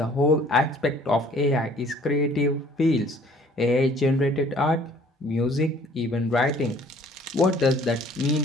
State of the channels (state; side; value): normal; both; correlation 0.55